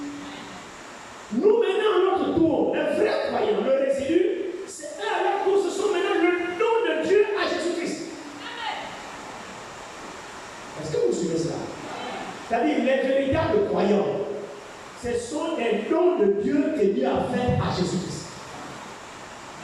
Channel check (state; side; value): identical; both; correlation 1.00